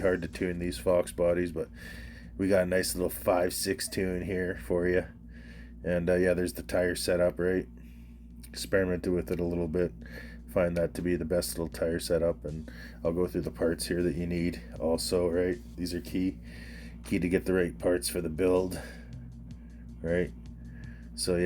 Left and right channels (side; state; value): both; identical; correlation 1.00